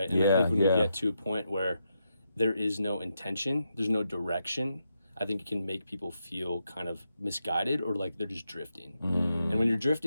And I think when we get to a point where there is no intention, there's no direction, I think it can make people feel kind of misguided or like they're just drifting. And when you're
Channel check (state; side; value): inverted; both; correlation -0.84